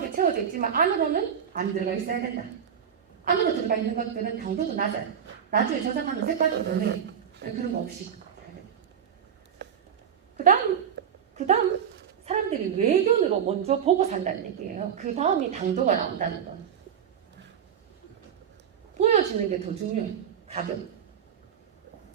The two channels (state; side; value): quieter; left; 8.2 dB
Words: 채워져 있지만 안으로는 안 들어가 있어야 된다. 안으로 들어가 있는 것들은 당도도 낮아요. 나중에 저장하면 색깔도 변해요. 그런 거 없이. 그 다음 사람들이 외견으로 먼저 보고 산다는 얘기예요. 그 다음이 당도가 나온다는 건. 보여지는 게 더 중요해요. 가격.